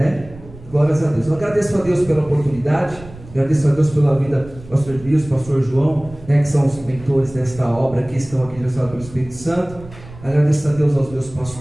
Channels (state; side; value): noise; right; rumble, 18 dB below the sound